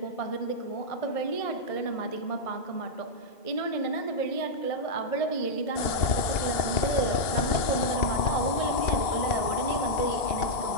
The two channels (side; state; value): right; late; 2.7 ms